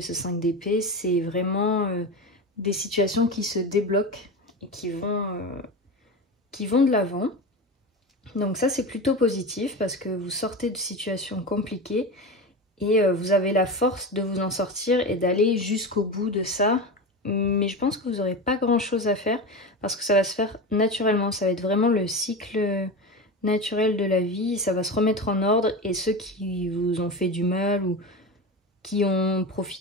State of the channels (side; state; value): both; normal; correlation 0.23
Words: ce 5 d'épée, c'est vraiment des situations qui se débloquent et qui vont de l'avant. Donc ça, c'est plutôt positif, parce que vous sortez de situations compliquées, et vous avez la force de vous en sortir et d'aller jusqu'au bout de ça. Mais je pense que vous n'aurez pas grand chose à faire, parce que ça va se faire naturellement. Ça va être vraiment le cycle naturel de la vie. Ça va se remettre en ordre, et ceux qui vous ont fait du mal ou qui ont